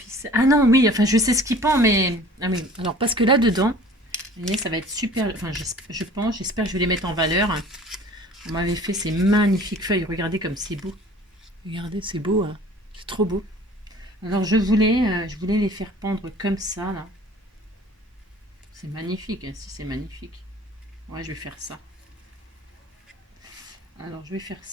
Ah non, oui, enfin, je sais ce qui pend, mais... Ah oui, alors, parce que là-dedans... Vous voyez, ça va être super. Enfin, j'espère que je vais les mettre en valeur. On m'avait fait ces magnifiques feuilles. Regardez comme c'est beau. Regardez, c'est beau. Hein. C'est trop beau. Alors, je voulais les faire pendre comme ça, là. C'est magnifique. Hein, si, c'est magnifique. Ouais, je vais faire ça. Alors, je vais faire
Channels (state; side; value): normal; both; correlation 0.48